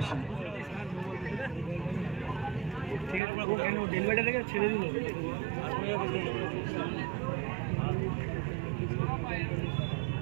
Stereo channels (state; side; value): drops out; left; at 3.2 s